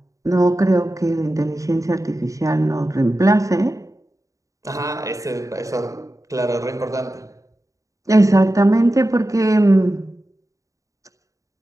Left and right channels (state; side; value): late; left; 0.16 ms